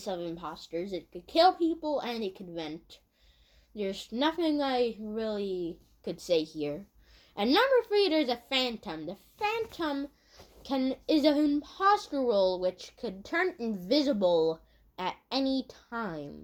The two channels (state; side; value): identical; both; correlation 1.00